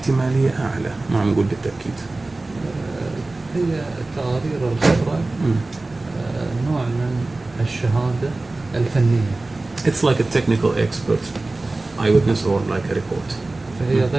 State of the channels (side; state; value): left; quieter; 3.1 dB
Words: أعلى ما نقول بالتأكيد. هي تقارير الخبرة نوع من الشهادة الفنية. It's like a technical expert eyewitness or like a report. فهي